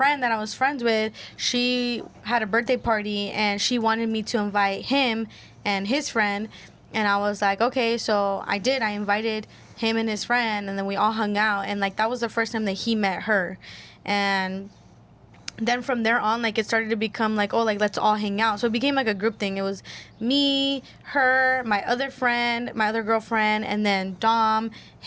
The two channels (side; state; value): both; identical; correlation 1.00